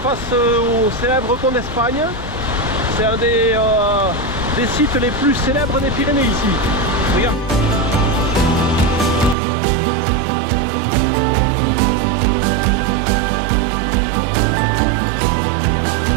au célèbre pont d'Espagne. C'est un des sites les plus célèbres des Pyrénées ici. Regarde.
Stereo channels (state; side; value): drops out; left; at 9.3 s